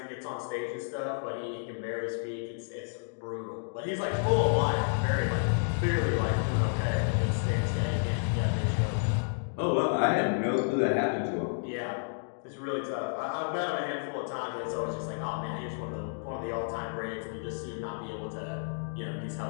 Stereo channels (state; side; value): silent; right; digital silence